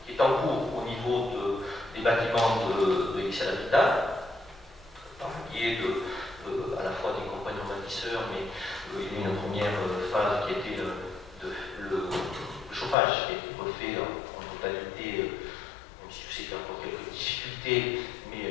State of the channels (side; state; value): right; drops out; at 13.0 s